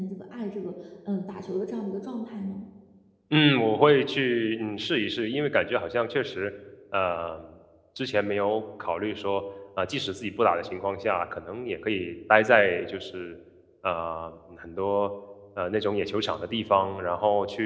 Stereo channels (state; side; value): identical; both; correlation 1.00